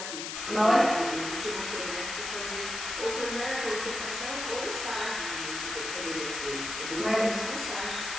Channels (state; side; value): noise; left; hiss, 5 dB below the sound